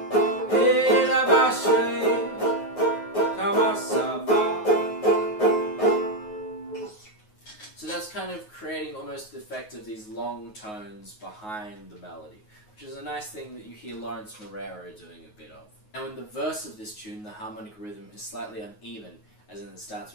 E La Ba She, Kama Sa Va. So that's kind of creating almost the effect of these long tones behind the melody, which is a nice thing that you hear Lawrence Moreira doing a bit of. Now in the verse of this tune, the harmonic rhythm is slightly uneven, as in it starts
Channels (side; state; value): right; late; 9.5 ms